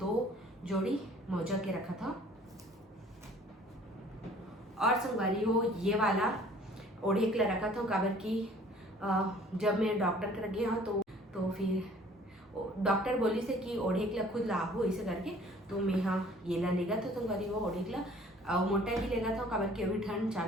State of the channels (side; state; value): both; normal; correlation 0.53